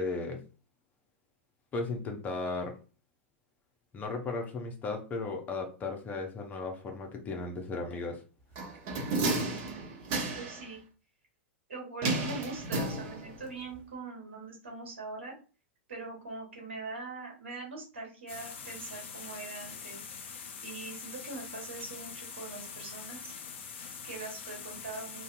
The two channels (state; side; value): normal; both; correlation 0.07